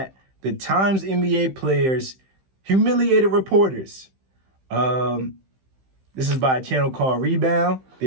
the Times NBA players humiliated reporters. This is by a channel called Rebound.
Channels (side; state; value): left; late; 15 ms